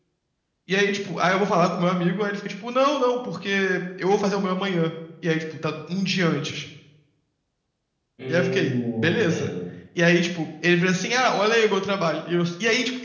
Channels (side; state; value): both; identical; correlation 1.00